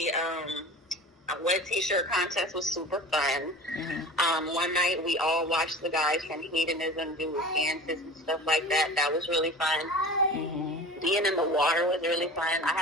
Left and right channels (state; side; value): normal; both; correlation 0.37